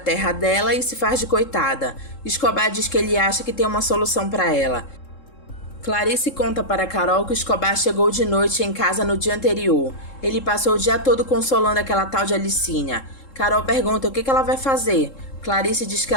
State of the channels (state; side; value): late; right; 3.7 ms